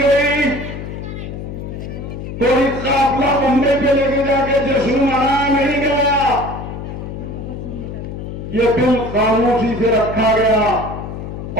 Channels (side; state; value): left; noise; hum, 8 dB below the sound